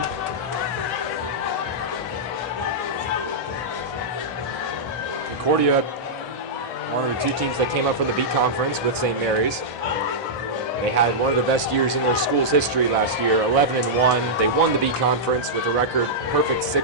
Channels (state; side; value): normal; both; correlation -0.11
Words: Concordia, one of the 2 teams that came up from the B conference with St. Mary's. They had one of the best years in their school's history last year, 11-1. They won the B conference with a record perfect